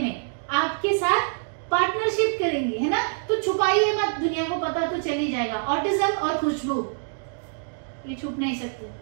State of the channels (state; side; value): silent; left; digital silence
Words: आपके साथ पार्टनरशिप करेंगे, है ना। तो छुपाइए मत, दुनिया को पता तो चल ही जाएगा। ऑटिज्म और खुशबू ये छुप नहीं सकते।